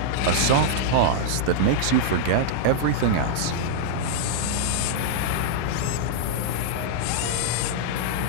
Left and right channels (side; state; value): both; different; correlation -0.02